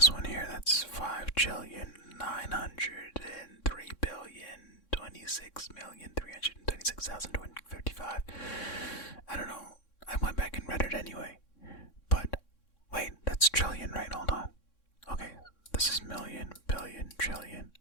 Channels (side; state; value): right; late; 3.6 ms